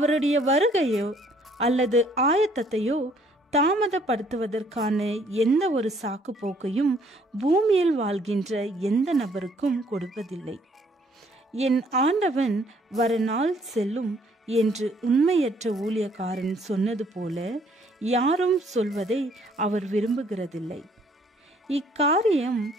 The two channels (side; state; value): both; normal; correlation 0.63